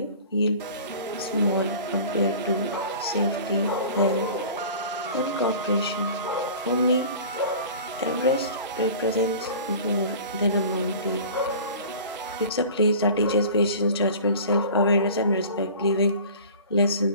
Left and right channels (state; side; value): inverted; both; correlation -0.41